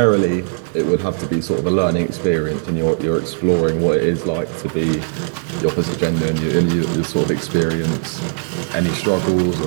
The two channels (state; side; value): silent; left; 65 dB below the other